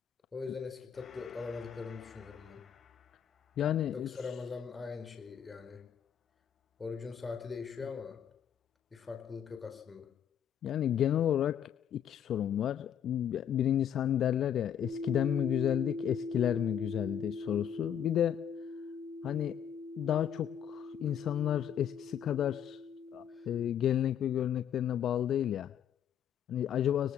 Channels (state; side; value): quieter; right; 9.0 dB